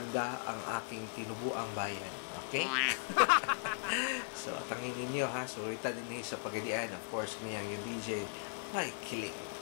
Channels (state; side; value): silent; right; 53 dB below the other